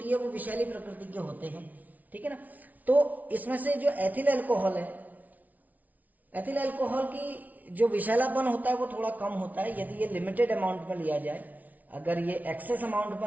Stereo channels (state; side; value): late; left; 0.075 ms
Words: है वो विषैली प्रकृति के होते हैं, ठीक है ना। तो इसमें से जो एथिल अल्कोहल है, एथिल अल्कोहल की जो विषैलापन होता है वो थोड़ा कम होता है यदि ये लिमिटेड अमाउंट में लिया जाए। अगर ये एक्सेस अमाउंट